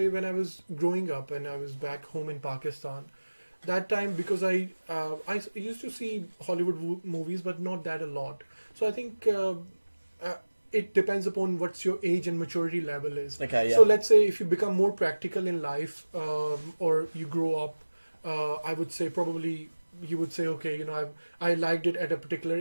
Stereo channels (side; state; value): both; inverted; correlation -1.00